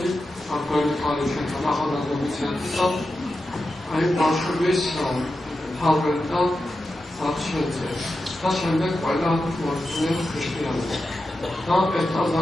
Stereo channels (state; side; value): normal; both; correlation 0.90